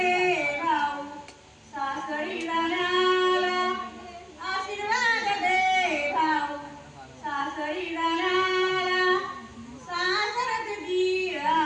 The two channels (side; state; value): both; identical; correlation 1.00